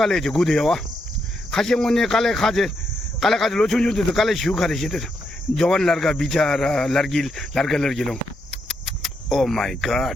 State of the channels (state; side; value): normal; both; correlation 0.80